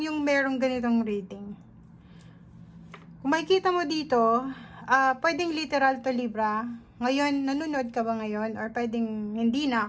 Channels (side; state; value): both; identical; correlation 1.00